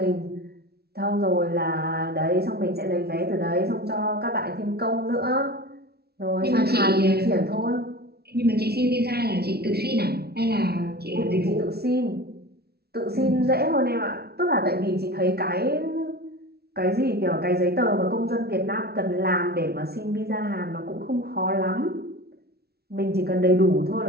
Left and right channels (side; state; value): left; late; 0.46 ms